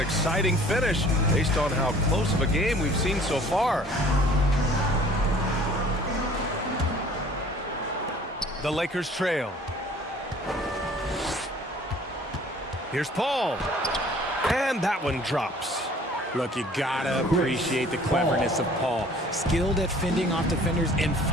finish based on how close of a game we've seen so far. The Lakers trail. Here's Paul. And that one drops. Look, you gotta appreciate the cleverness of Paul. Skilled at fending off defenders and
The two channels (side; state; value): both; normal; correlation 0.52